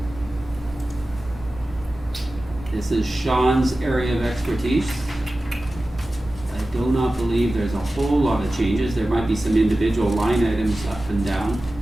This is Sean's area of expertise. I do not believe there's a whole lot of changes. There might be some individual line items up and down.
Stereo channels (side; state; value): both; normal; correlation 0.95